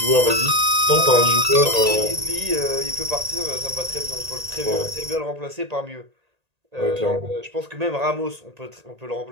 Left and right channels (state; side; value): late; left; 1.8 ms